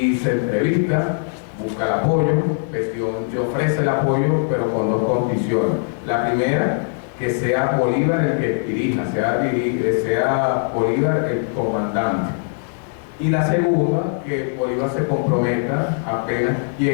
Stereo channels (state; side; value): silent; right; digital silence